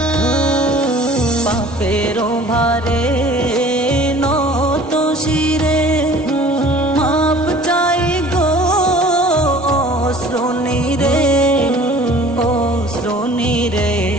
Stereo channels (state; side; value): normal; both; correlation 0.48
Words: পাপের ভারে নত শিরে মাপ চাই গো শ্রোণীরে, ও শ্রোণীরে,